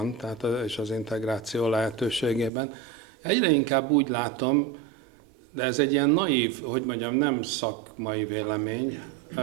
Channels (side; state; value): left; drops out; at 2.5 s